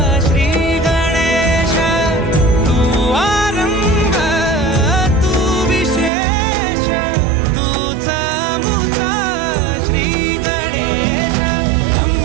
श्री गणेश। तू आरंभ तू विशेष, तूच मुचा श्री गणेश।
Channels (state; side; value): drops out; left; at 6.1 s